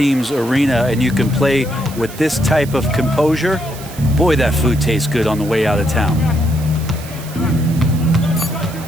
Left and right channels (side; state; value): right; noise; hiss, 16 dB below the sound